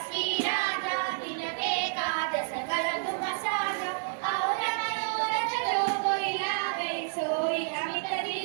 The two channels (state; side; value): silent; left; 58 dB below the other